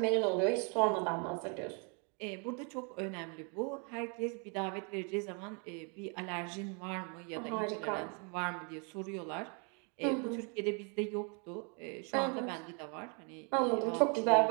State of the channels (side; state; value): left; quieter; 36.2 dB